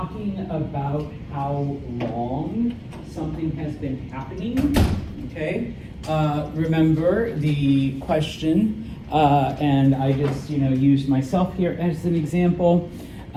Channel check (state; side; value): identical; both; correlation 1.00